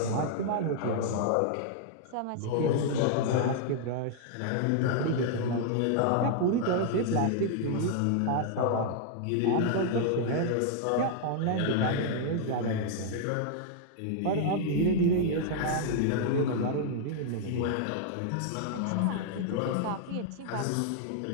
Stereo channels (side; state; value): both; different; correlation -0.01